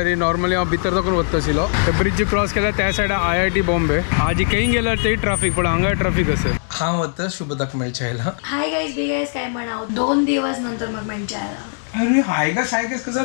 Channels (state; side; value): silent; right; digital silence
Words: नॉर्मली हांव भितर दाखून वता आशिल्लो ते ब्रिज क्रॉस केल्यार त्या सायडा IIT बॉम्बे आज खंय गेल्यार तेय ट्राफीक पण हांगा ट्राफीक आसा हांव वता शुभदाक मेळचे आयला हाय गाइस बी गाइस काय म्हणाव 2 दिवस नंतर म्हाका मेळचे आयला अरे हाय गाइस कसं